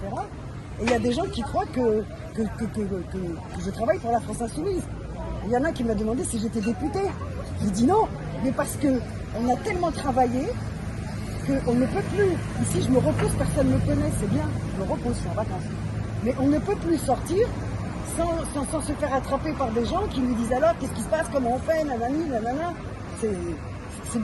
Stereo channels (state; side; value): identical; both; correlation 1.00